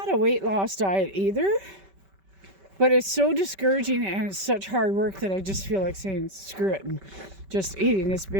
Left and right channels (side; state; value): left; late; 5.2 ms